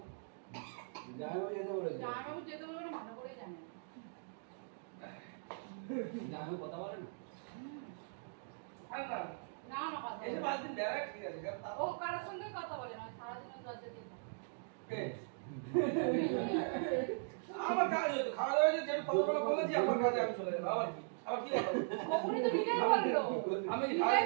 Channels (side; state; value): left; silent; digital silence